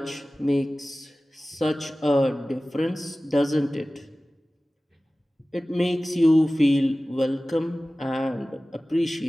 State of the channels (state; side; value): normal; both; correlation 0.97